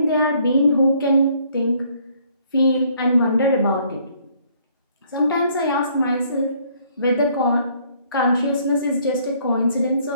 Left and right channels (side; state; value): both; inverted; correlation -0.64